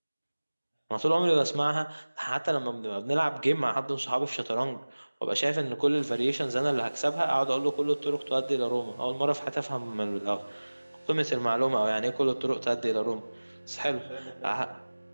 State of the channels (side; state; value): both; inverted; correlation -1.00